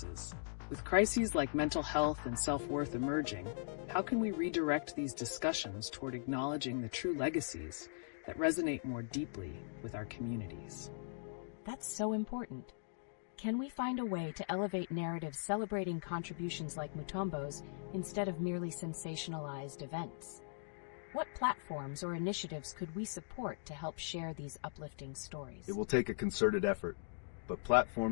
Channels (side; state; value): right; silent; digital silence